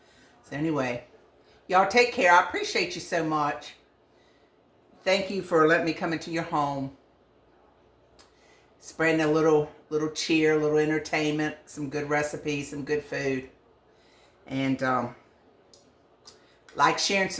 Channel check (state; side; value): identical; both; correlation 1.00